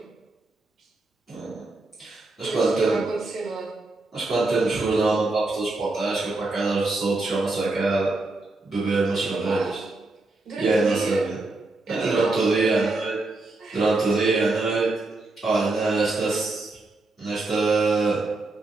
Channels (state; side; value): quieter; left; 3.1 dB